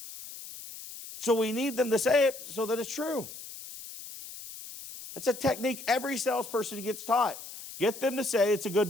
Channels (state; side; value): noise; left; hiss, 13 dB below the sound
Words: So we need them to say it so that it's true. It's a technique every salesperson gets taught. Get them to say it's a good